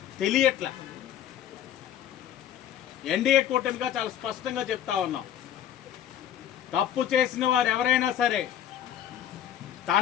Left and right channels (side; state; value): right; quieter; 10.5 dB